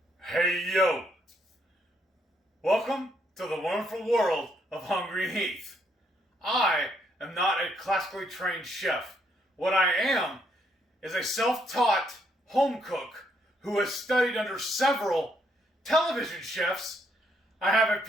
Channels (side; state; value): both; normal; correlation 0.73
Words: Hey yo! Welcome to the wonderful world of Hungry Heath. I am not a classically trained chef. What I am is a self-taught home cook who has studied under several television chefs. I have a